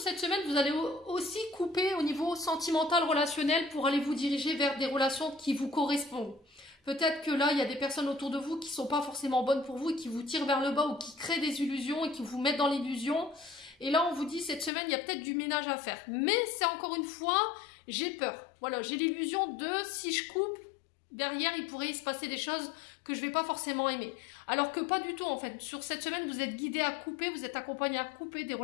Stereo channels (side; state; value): right; drops out; at 14.7 s